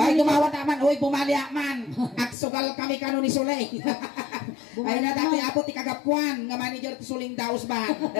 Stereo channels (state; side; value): drops out; right; at 2.4 s